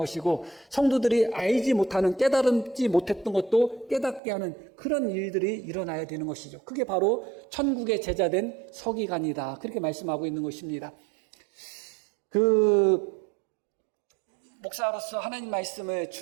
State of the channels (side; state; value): left; drops out; at 4.2 s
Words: 성도들이 알지 못하는 깨달지 못했던 것도 깨닫게 하는 그런 일들이 일어나야 되는 것이죠. 그게 바로 천국의 제자된 서기관이다. 그렇게 말씀하고 있는 것입니다. 목사로서 하나님 말씀을